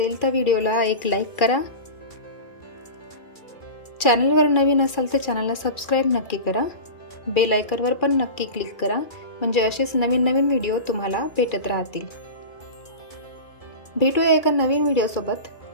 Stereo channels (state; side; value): late; right; 2.4 ms